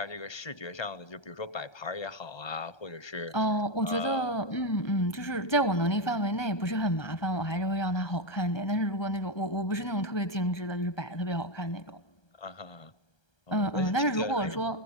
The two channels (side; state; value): right; late; 1.3 ms